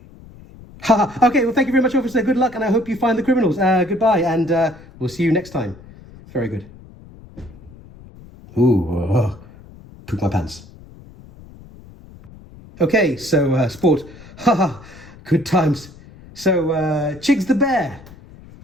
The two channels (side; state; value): left; noise; rumble, 21 dB below the sound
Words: Okay, well, thank you very much, officer. Good luck, and I hope you find the criminals. Goodbye, and we'll see you next time. Very good. Ooh, poop my pants. Okay, so sport. Good times. So, Chigs the bear,